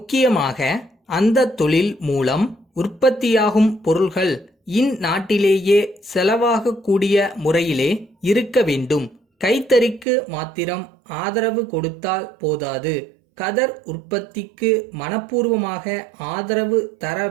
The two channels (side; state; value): left; drops out; at 10.1 s